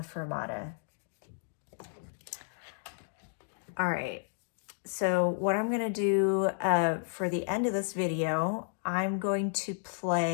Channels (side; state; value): right; silent; digital silence